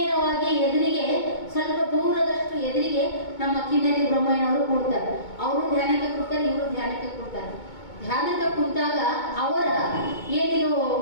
ಎದುರಿಗೆ, ಸ್ವಲ್ಪ ದೂರದಷ್ಟು ಎದುರಿಗೆ ನಮ್ಮ ಕಿನ್ನರಿ ಬ್ರಹ್ಮಯ್ಯನವರು ಕೂಡ್ತಾರೆ. ಅವರು ಧ್ಯಾನಕ್ಕೆ ಕೂಡ್ತಾರೆ, ಇವರು ಧ್ಯಾನಕ್ಕೆ ಕೂಡ್ತಾರೆ. ಧ್ಯಾನಕ್ಕೆ ಕುಂತಾಗ ಅವರ ಏನಿದು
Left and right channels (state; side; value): late; right; 2.2 ms